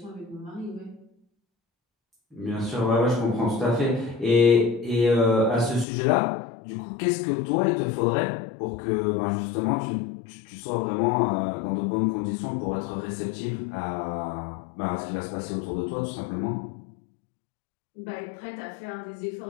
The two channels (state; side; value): drops out; right; at 5.9 s